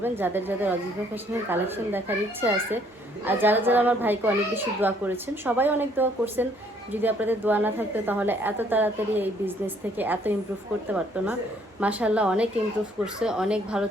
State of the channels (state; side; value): normal; both; correlation 0.64